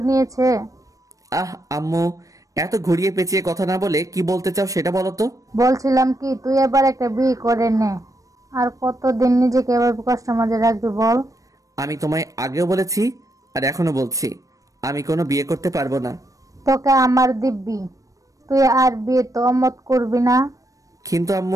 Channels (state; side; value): late; left; 0.16 ms